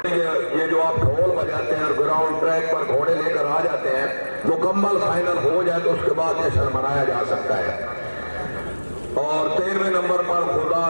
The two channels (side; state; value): both; inverted; correlation -1.00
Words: ये जो आप ढोल बजाते हैं और ग्राउंड ट्रैक पर घोड़े लेकर आ जाते हैं, मुकम्मल फाइनल हो जाए तो उसके बाद जश्न मनाया जा सकता है। और 13वें नंबर पर खुदा